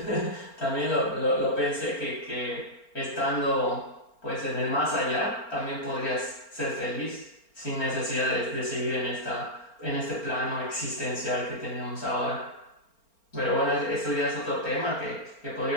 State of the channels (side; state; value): right; late; 4.4 ms